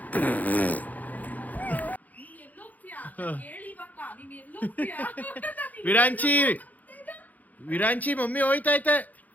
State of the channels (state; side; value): late; right; 0.080 ms